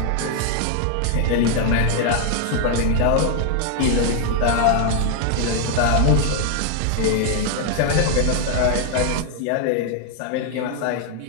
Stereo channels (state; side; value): different; both; correlation 0.00